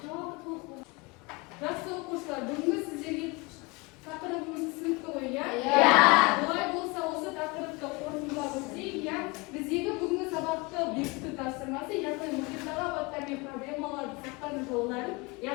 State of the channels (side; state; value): right; quieter; 25.6 dB